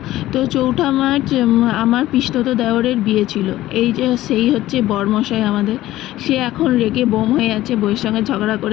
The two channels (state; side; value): quieter; right; 15.3 dB